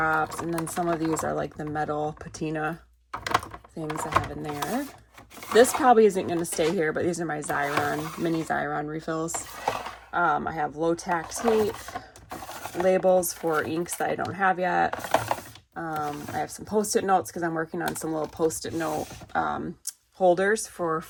and then some of these are like the metal patina things I have in there. This probably isn't going to stay here, but these are my mini Xyron refills. I have low tack tape, labels for inks that I don't have yet. I have some post-it notes because I'm working on some little post-it note holders for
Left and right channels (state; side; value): identical; both; correlation 1.00